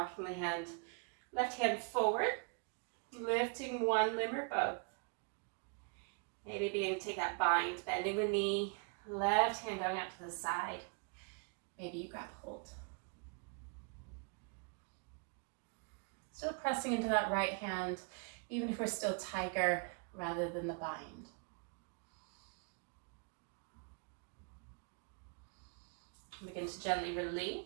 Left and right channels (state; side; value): quieter; left; 37.0 dB